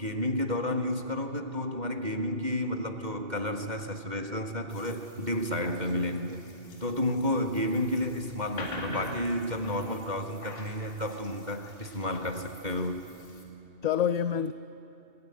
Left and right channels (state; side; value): late; left; 2.1 ms